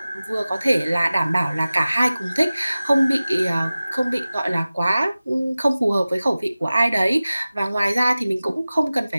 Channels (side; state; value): both; inverted; correlation -0.97